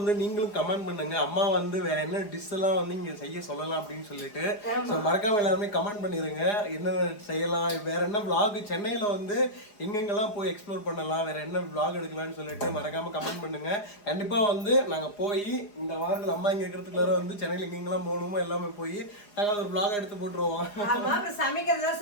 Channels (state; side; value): late; right; 4.9 ms